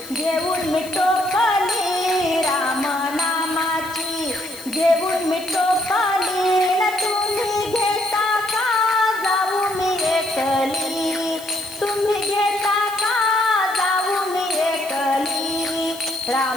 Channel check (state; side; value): noise; left; hiss, 17 dB below the sound